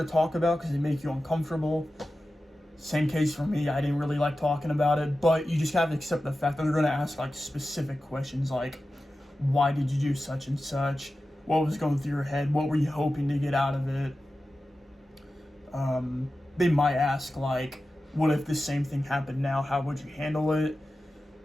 talk about because they make you uncomfortable. Same case for me. I didn't really like talking about it, but you just have to accept the fact that they're going to ask like specific questions like, why did you do such and such? What was going through your head? What were you hoping to get out of it? They might ask like, what if the same thing happened now? How would you handle it?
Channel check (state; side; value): normal; both; correlation 0.93